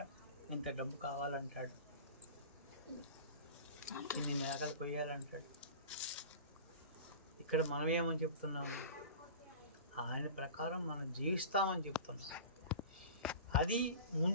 ఇంత డబ్బు కావాలంటాడు, ఇన్ని మేకలు కొయ్యాలంటాడు. ఇక్కడ మనం ఏమని చెప్తున్నాము? ఆయన ప్రకారం మనం జీవిస్తామని చెప్తున్నాం. అది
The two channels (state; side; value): inverted; both; correlation -0.36